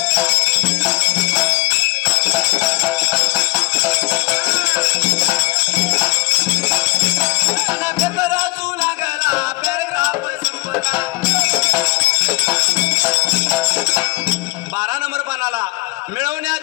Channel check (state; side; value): quieter; right; 24.3 dB